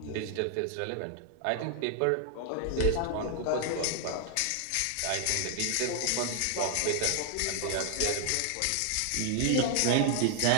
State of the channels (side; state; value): both; different; correlation 0.00